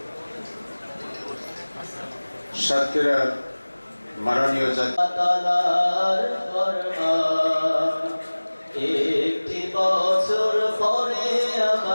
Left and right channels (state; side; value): inverted; both; correlation -1.00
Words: সাতক্ষীরার মাননীয় একটি বছর পরে